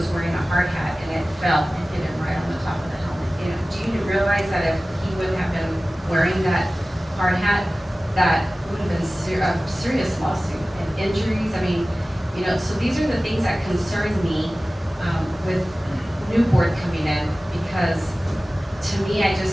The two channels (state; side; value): normal; both; correlation 0.97